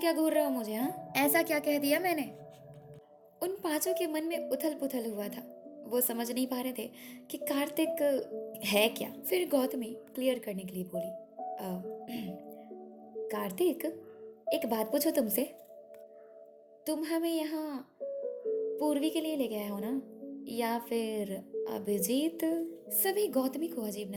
घूर रहे हो मुझे? हाँ, ऐसा क्या कह दिया मैंने? उन पांचों के मन में उथल पुथल हुआ था। वो समझ नहीं पा रहे थे कि कार्तिक है क्या। फिर गौतमी क्लियर करने के लिए बोली, कार्तिक एक बात पूछो तुमसे, तुम हमें यहाँ पूर्वी के लिए ले गए हो ना, या फिर अभिजीत? सभी गौतमी को अजीब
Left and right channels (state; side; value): identical; both; correlation 1.00